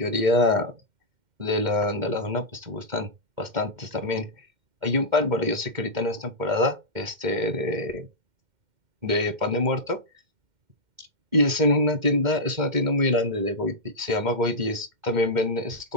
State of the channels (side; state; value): left; late; 2.1 ms